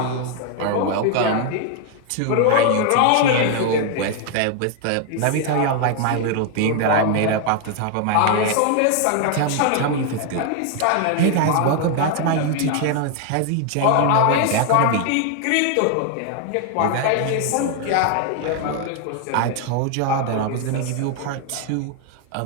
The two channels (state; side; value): different; both; correlation 0.00